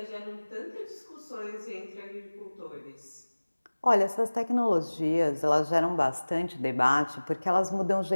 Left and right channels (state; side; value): inverted; both; correlation -1.00